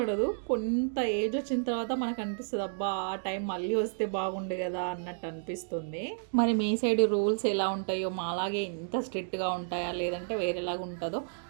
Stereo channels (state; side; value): silent; left; digital silence